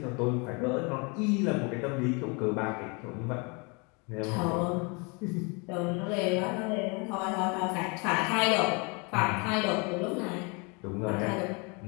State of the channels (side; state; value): right; quieter; 31.4 dB